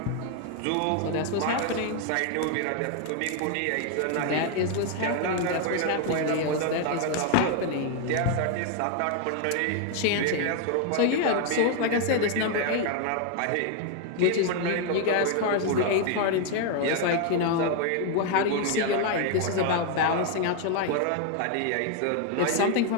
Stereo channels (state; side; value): different; both; correlation 0.01